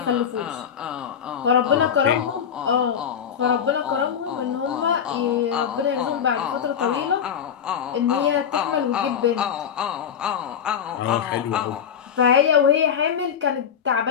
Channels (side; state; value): right; quieter; 8.0 dB